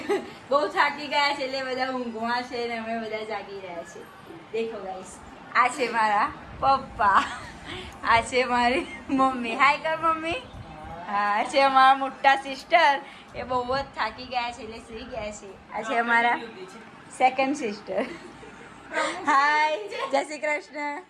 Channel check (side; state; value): both; identical; correlation 1.00